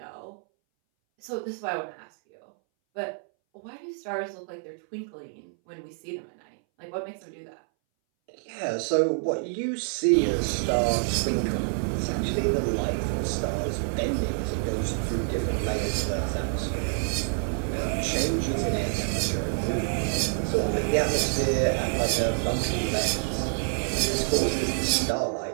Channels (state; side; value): silent; left; 60 dB below the other